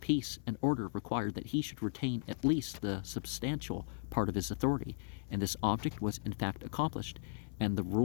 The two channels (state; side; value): silent; right; 53 dB below the other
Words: and order required that he should retain at least the substantial part of his authority, and this object was in fact accomplished, and the